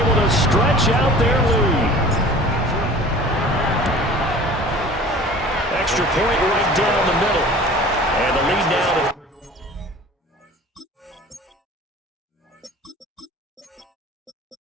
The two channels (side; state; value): both; normal; correlation 0.44